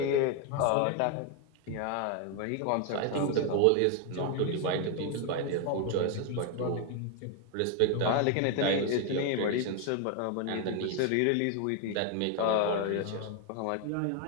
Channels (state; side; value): different; both; correlation 0.01